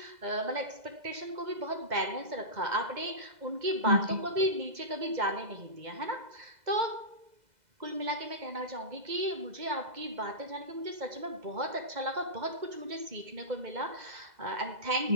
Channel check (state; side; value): late; left; 2.0 ms